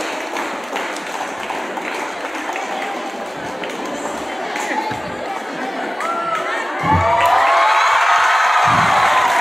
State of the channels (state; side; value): normal; both; correlation 0.97